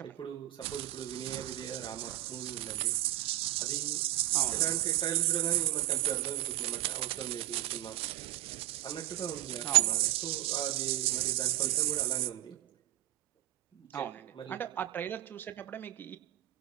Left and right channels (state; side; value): quieter; left; 14.4 dB